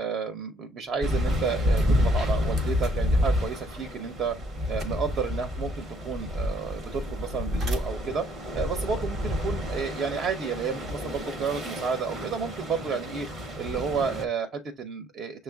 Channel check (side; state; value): both; normal; correlation 0.64